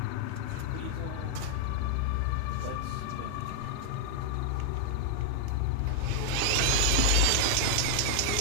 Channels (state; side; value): different; both; correlation 0.00